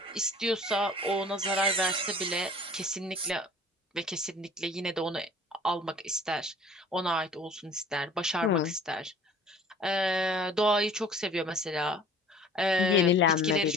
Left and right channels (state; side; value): normal; both; correlation 0.48